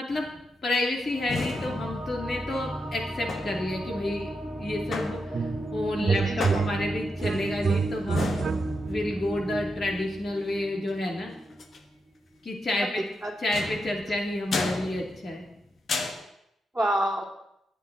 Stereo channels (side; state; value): both; normal; correlation 0.85